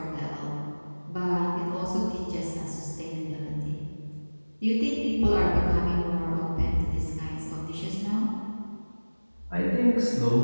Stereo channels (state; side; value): inverted; both; correlation -1.00